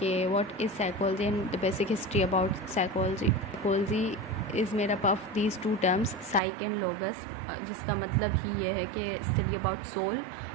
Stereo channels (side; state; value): left; drops out; at 6.4 s